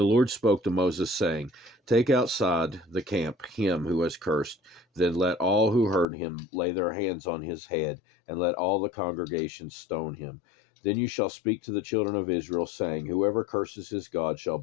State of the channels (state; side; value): drops out; right; at 6.1 s